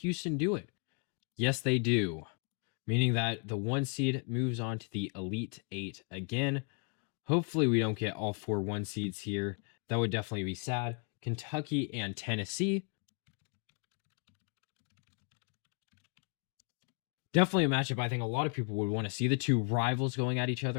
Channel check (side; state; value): right; quieter; 38.2 dB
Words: do it? Yes, they do. Meaning that the 1 seed moves on to the Elite 8 again. Hopefully we don't get all 4 1 seeds here. That would definitely be sad. Kentucky and Tennessee. Definitely a matchup I think a lot of people would want to see. The two rivals going at each other